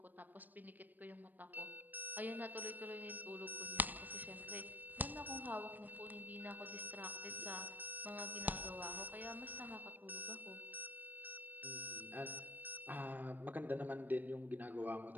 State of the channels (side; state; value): left; late; 0.087 ms